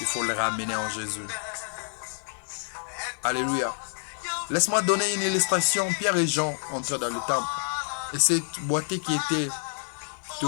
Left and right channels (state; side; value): silent; right; digital silence